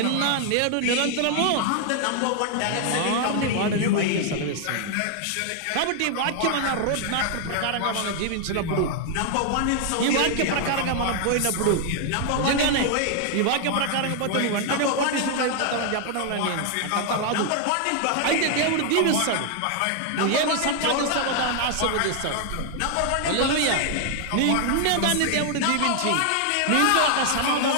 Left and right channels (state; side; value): different; both; correlation 0.00